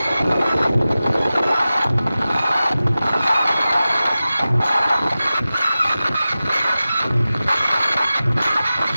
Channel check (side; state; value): both; inverted; correlation -0.95